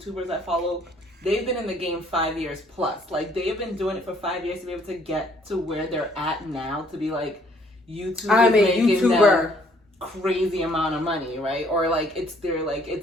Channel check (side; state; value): both; normal; correlation 0.63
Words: I follow, they've been in the game 5 years plus. Like, they've been doing it for 5 years to be able to get to where they're at now, to be like, I'm a YouTuber. Crazy amount of money, right? Or like it's